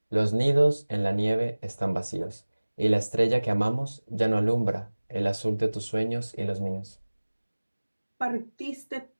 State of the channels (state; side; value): inverted; both; correlation -1.00